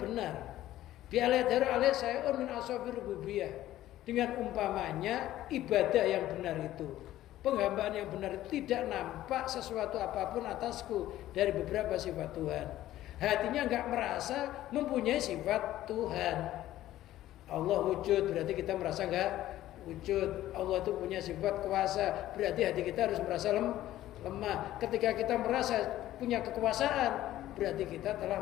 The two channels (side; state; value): right; quieter; 14.1 dB